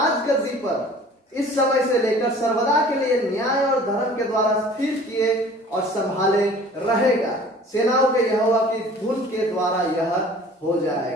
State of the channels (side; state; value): both; normal; correlation 0.48